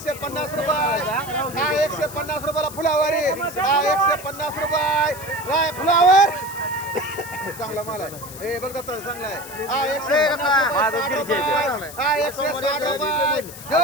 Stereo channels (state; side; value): noise; left; hiss, 14 dB below the sound